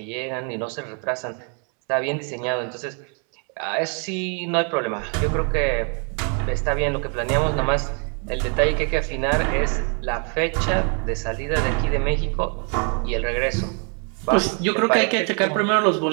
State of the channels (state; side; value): quieter; left; 38.9 dB